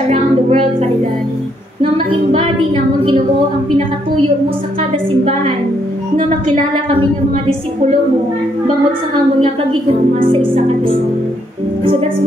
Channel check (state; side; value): normal; both; correlation 0.73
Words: around the world, Father God, nga ma-embody namon Ginoo ang pinakatuyo mo sa kada simbahan, nga makilala kami ng mga disipulo mo bangod sa amon nga pagigugma sa isa ka isa. So that's